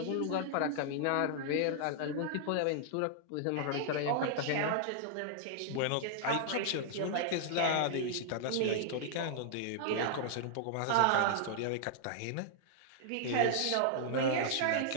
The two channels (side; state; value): both; different; correlation -0.01